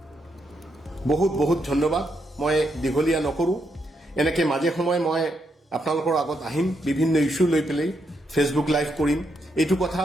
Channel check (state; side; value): normal; both; correlation 0.80